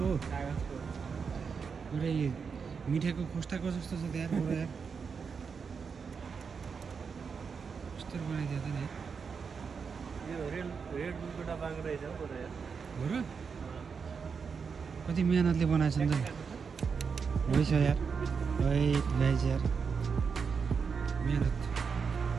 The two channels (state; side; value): quieter; left; 5.8 dB